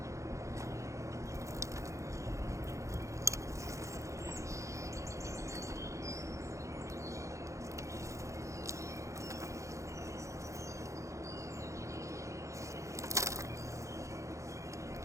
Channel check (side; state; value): left; late; 0.15 ms